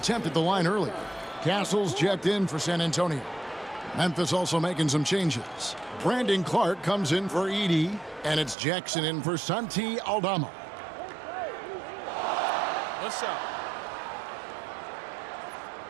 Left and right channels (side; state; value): left; drops out; at 8.6 s